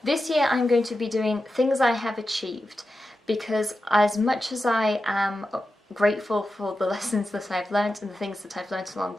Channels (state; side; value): normal; both; correlation 0.91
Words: This year I'm going to be doing things I have achieved, because as much as I am grateful for the lessons that I've learnt and the things that I've learnt along